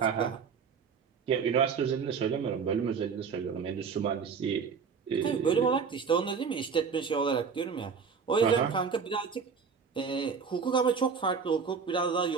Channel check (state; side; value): quieter; left; 5.9 dB